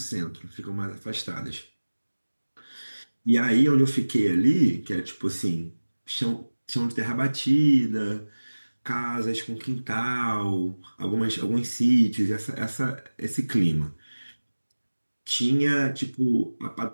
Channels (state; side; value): inverted; both; correlation -1.00